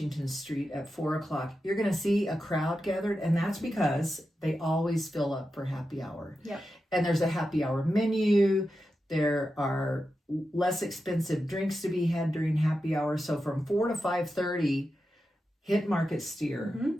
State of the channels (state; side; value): normal; both; correlation 0.90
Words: Street at 4 o'clock, you're going to see a crowd gathered, and that's because they always fill up for happy hour. Yep. And there's a happy hour menu. There are less expensive drinks to be had during happy hour. So from 4 to 5:30, hit Market Steer